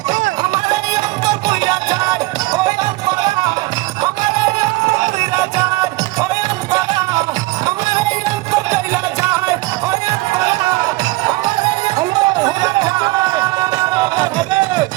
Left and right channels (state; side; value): quieter; left; 21.1 dB